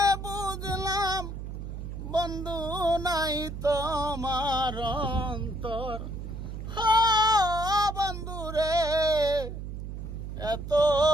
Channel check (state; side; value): noise; right; hum, 7 dB below the sound